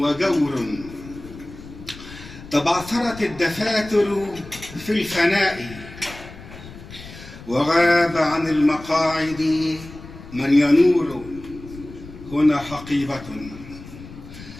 تبعثرت الدفاتر في الفناء، وغاب عن المقاعد من ينور. هنا حقيبة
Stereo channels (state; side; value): noise; left; rumble, 16 dB below the sound